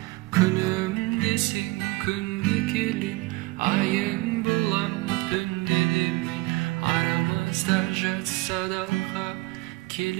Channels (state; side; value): quieter; left; 22.1 dB